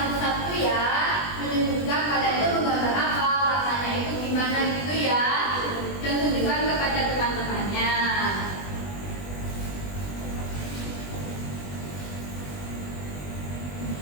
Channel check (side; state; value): right; late; 20 ms